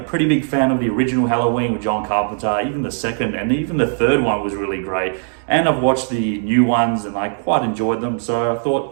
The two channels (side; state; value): left; silent; digital silence